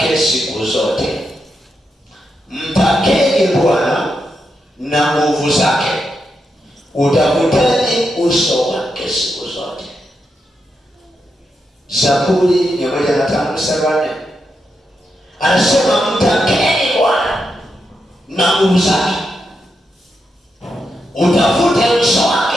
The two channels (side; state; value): both; normal; correlation 0.84